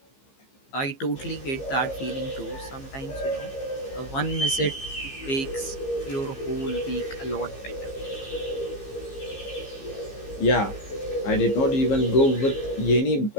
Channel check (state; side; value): late; right; 15 ms